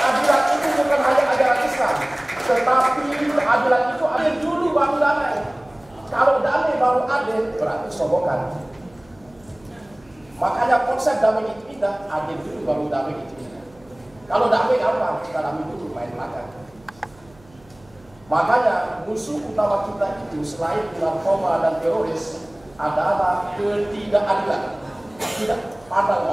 itu bukan hanya ajaran Islam, tetapi keadilan itu adil dulu baru damai. Kalau damai baru adil, berarti sobokan. Makanya konsep damai itu indah, adil dulu baru damai itu indah. Kalau damai gampang, kita damai dulu main belakang. Makanya musuh utama kita itu selain narkoba dan teroris adalah ketidakadilan. Tidak pandang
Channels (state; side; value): noise; right; hum, 28 dB below the sound